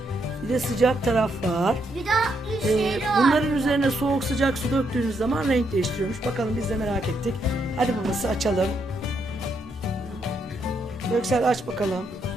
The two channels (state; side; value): normal; both; correlation 0.77